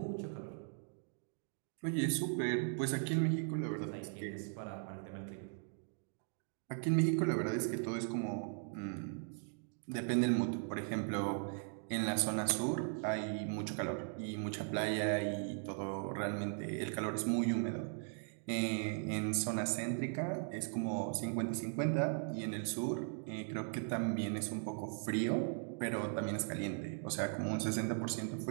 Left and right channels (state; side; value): silent; left; 52 dB below the other